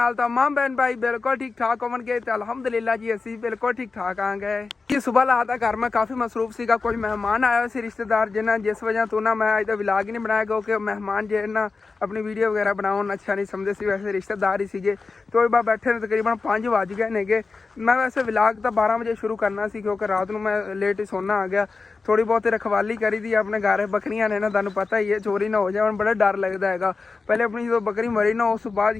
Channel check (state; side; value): quieter; right; 4.3 dB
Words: ਤਾਂ ਮਾਮ ਬਹਿਨ ਭਾਈ ਬਿਲਕੁਲ ਠੀਕ ਠਾਕ ਹੋਣਗੇ ਤੇ ਅਲਹਮਦੁਲਿਲਾ ਜੀ ਅਸੀਂ ਬਿਲਕੁਲ ਠੀਕ ਠਾਕ ਆ ਗਏ ਕਿ ਸੁਬਹ ਲਾ ਦਾ ਘਰ ਮੈਂ ਕਾਫੀ ਮਸਰੂਫ ਸੀਗਾ। ਕੁਝ ਮਹਿਮਾਨ ਆਏ ਸੀ ਰਿਸ਼ਤੇਦਾਰ, ਜਿਨ੍ਹਾਂ ਜਿਸ ਵਜ੍ਹਾ ਤੋਂ ਨਾ ਮੈਂ ਅੱਜ ਦਾ ਵਲੌਗ ਹੀ ਨਹੀਂ ਬਣਾਇਆ ਕਿਉਂਕਿ ਮਹਿਮਾਨ ਜੇ ਨਾ ਆਪਣੀ ਵੀਡੀਓ ਵਗੈਰਾ ਬਣਾਉਣ ਅੱਛਾ ਨਹੀਂ ਸਮਝਦੇ ਸੀ। ਵੈਸੇ ਰਿਸ਼ਤੇਦਾਰ ਹੀ ਸੀਗੇ ਤੇ ਉਹ ਬਾਅਦ ਬੈਠੇ ਨੇ ਤਕਰੀਬਨ 5 ਵੱਜ ਗਏ ਨੇਗੇ। ਮੈਂ ਵੈਸੇ ਵਲੌਗ ਤਾਂ 12 ਵਜੇ ਸ਼ੁਰੂ ਕਰਨਾ ਸੀ ਕਿਉਂਕਿ ਰਾਤ ਨੂੰ ਮੈਂ ਲੇਟ ਹੀ ਸੋਨਾ ਆ ਗਿਆ। ਥੋੜੀ ਬਹੁਤੀ ਰਖਵਾਲੀ ਕਰੀ ਦੀ ਆਪਣੇ ਘਰ, ਬੱਕਰੀਆਂ ਨੇ ਨਾ ਤੁਹਾਨੂੰ ਪਤਾ ਹੀ ਹੈ, ਚੋਰੀ ਨਾ ਹੋ ਜਾਣ ਬੜਾ ਡਰ ਲੱਗਦਾ ਹੈਗਾ। ਪਹਿਲੇ ਆਪਣੀ ਜਦੋਂ ਬੱਕਰੀ ਮਰੀ ਨਾ ਉਸ ਤੋਂ ਬਾਅਦ